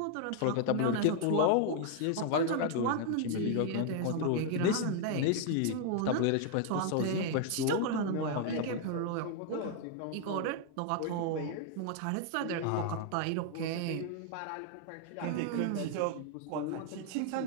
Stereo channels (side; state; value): both; different; correlation 0.00